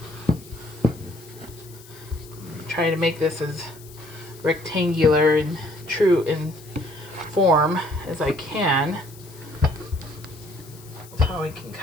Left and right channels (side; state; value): left; noise; hiss, 21 dB below the sound